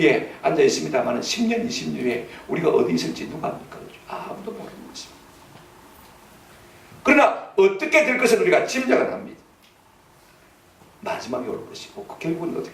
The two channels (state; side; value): identical; both; correlation 1.00